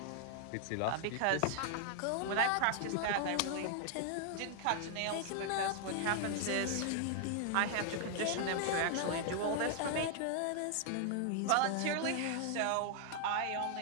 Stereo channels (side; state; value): both; different; correlation 0.00